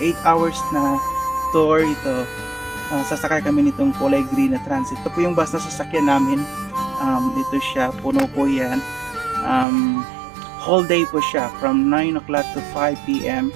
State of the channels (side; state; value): left; drops out; at 9.7 s